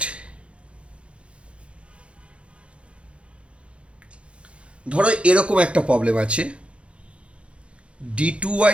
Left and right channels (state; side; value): late; left; 0.060 ms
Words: ধরো এরকম একটা প্রবলেম আছে,